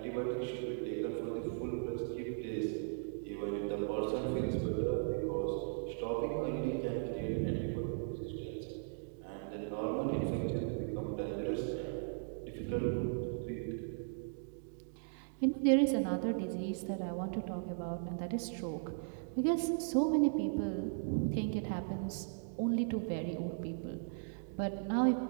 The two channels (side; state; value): left; silent; digital silence